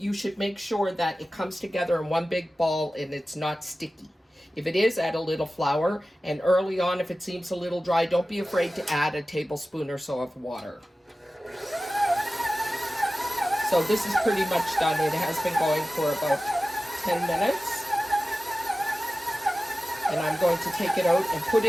should make sure that it comes together in one big ball and it's not sticky. If it is, add a little flour, and early on, if it seems a little dry, don't be afraid to add a tablespoon or so of water. So this is pretty much done. It has been going for about 10 minutes. And I'm going to take it out and put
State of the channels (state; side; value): normal; both; correlation 0.95